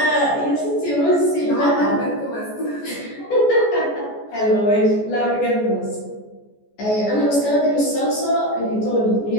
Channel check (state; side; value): late; right; 14 ms